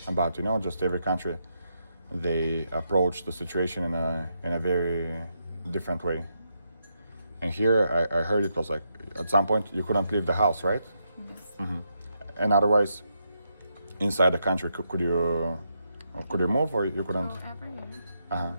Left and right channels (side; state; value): both; inverted; correlation -0.82